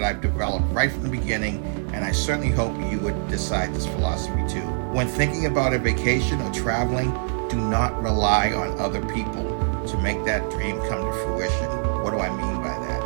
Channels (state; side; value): silent; left; digital silence